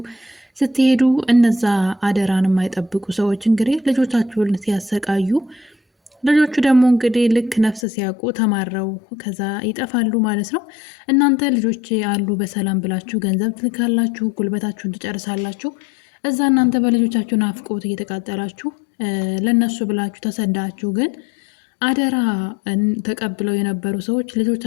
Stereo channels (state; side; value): drops out; right; at 7.9 s